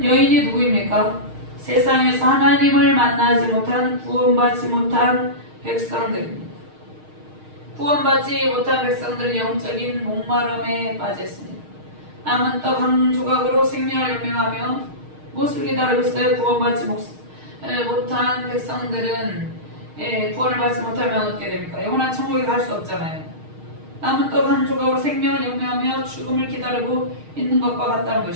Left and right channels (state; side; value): late; left; 6.4 ms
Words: 여인이 누구입니까? 세상에서 하나님을 만나지 못한 구원받지 못한 백성들입니다. 구원받지 못한 백성들은 영적인 목마름에 빠졌습니다. 남은 떡 한 조각으로 생명을 연명하며 무엇을 기다리고 있어요? 구원받지 못한 백성들은 구원을 받지 못하면 어떻게 됩니까? 영원한 천국에 갈 수 없잖아요. 남은 떡 한 조각으로 생명을 연명하며 죽음을 기다리고 있는 것과 같다는